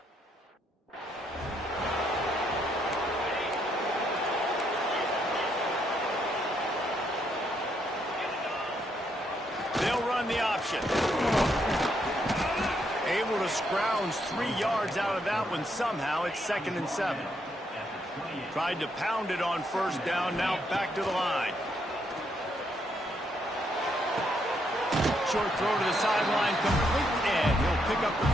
They'll run the option. Able to scrounge 3 yards out of that one somehow. It's 2nd and 7. Tried to pound it on first down. Now back to the line. Short throw to the sideline complete, and he'll pick up the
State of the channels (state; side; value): normal; both; correlation 0.75